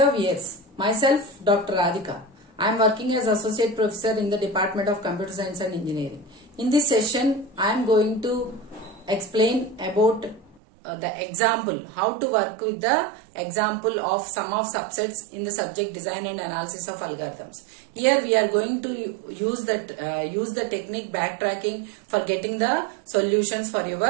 viewers, myself Dr. Radhika. I am working as Associate Professor in the Department of Computer Science and Engineering. In this session, I am going to explain about the example, how to work with the example of sum of subsets in the subject design and analysis of algorithms. Here we are going to use the technique backtracking for getting the solutions for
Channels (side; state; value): left; drops out; at 10.6 s